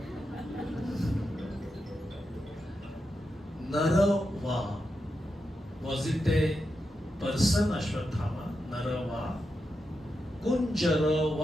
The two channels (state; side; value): normal; both; correlation 0.87